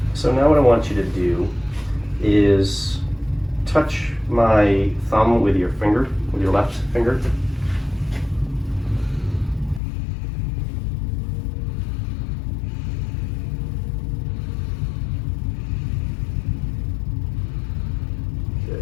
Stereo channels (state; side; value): drops out; right; at 9.8 s